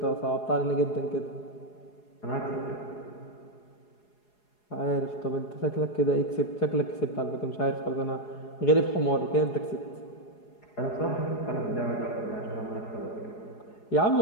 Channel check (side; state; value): right; late; 4.8 ms